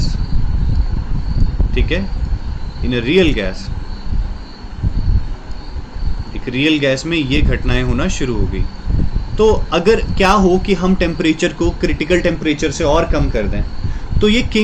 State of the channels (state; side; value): identical; both; correlation 1.00